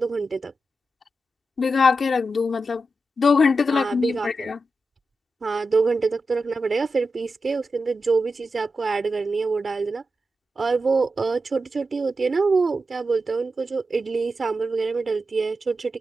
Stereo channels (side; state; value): both; normal; correlation 0.89